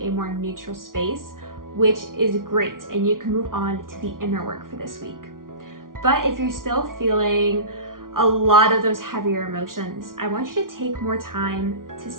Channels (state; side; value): late; left; 0.90 ms